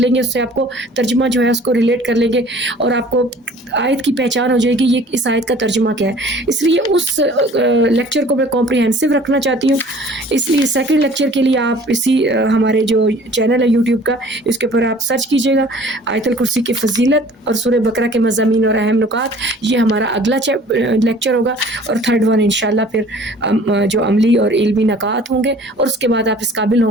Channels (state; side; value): normal; both; correlation 0.50